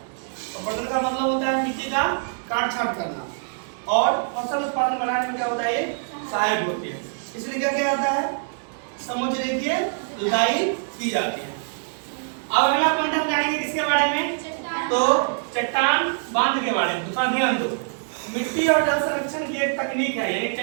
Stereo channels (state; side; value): silent; left; 62 dB below the other